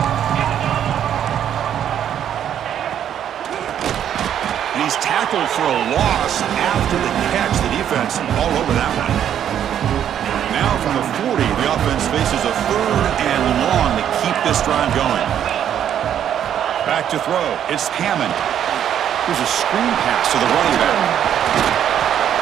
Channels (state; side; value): quieter; left; 9.8 dB